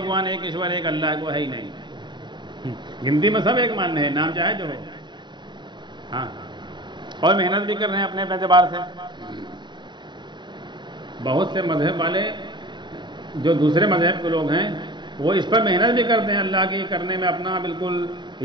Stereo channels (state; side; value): late; left; 0.22 ms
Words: ایک ایشور، ایک اللہ کو ہے ہی نہیں. گنتی میں سب ایک مان رہے ہیں، نام چاہے جو ہو. ہاں، اور محنت بھی کر رہے ہیں اپنے اعتبار سے. بہت سے مذہب والے جو دوسرے مذہب کے لوگ ہیں وہ اس پر محنت بھی کرتے ہیں اللہ کی کرنے میں، اپنا بالکل